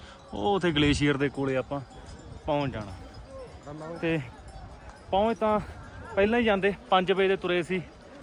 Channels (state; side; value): identical; both; correlation 1.00